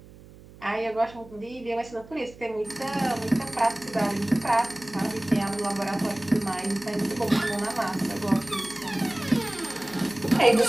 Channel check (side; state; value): right; noise; hum, 20 dB below the sound